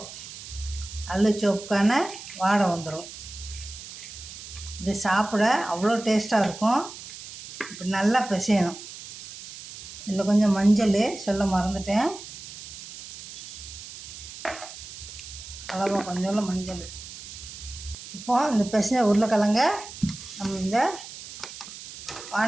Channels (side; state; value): right; noise; hiss, 13 dB below the sound